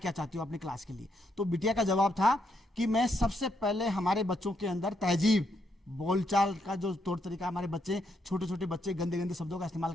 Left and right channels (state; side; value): normal; both; correlation 0.77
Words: चाहती हो अपनी क्लास के लिए। तो बिटिया का जवाब था कि मैं सबसे पहले हमारे बच्चों के अंदर तहजीब, बोलचाल का जो तौर तरीका, हमारे बच्चे छोटे छोटे बच्चे गंदे गंदे शब्दों का इस्तेमाल